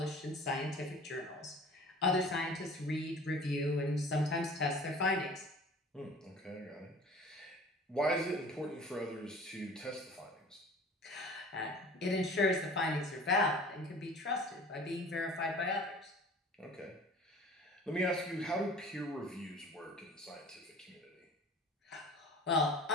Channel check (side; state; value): both; normal; correlation 0.44